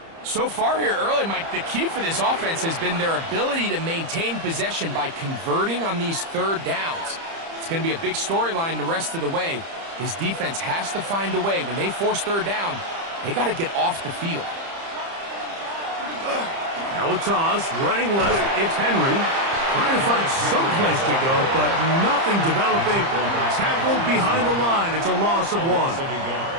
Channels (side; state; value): left; late; 30 ms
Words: So far here early, Mike, the key for this offense has been their ability to maintain possession by converting on these third downs. It's going to be a big storyline the rest of the way. This defense has to find a way. When they force third down, they got to get off the field. Now a toss, running left, it's Henry. Trying to find some place to go, but nothing developing. Tackled behind the line. It's a loss of 1.